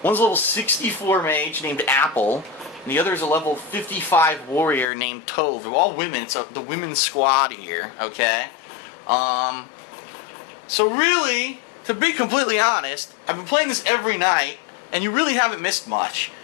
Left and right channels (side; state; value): right; drops out; at 4.9 s